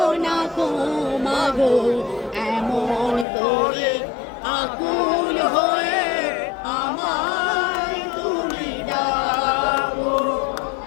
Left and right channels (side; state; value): right; drops out; at 3.2 s